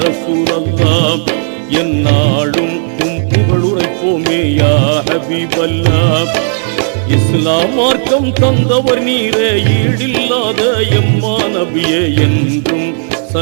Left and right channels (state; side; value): silent; left; digital silence